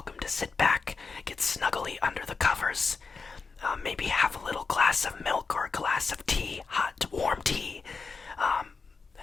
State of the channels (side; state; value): right; quieter; 4.7 dB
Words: to sit back, get snuggly under the covers, maybe have a little glass of milk or a glass of tea, hot, warm tea.